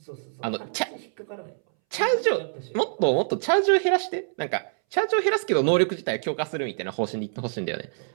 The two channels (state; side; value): silent; left; 61 dB below the other